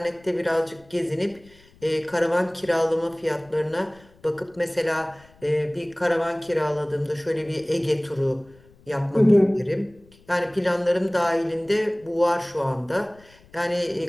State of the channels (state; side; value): noise; left; rumble, 27 dB below the sound